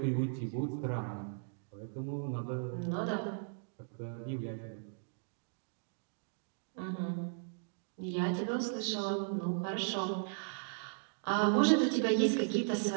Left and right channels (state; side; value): silent; left; digital silence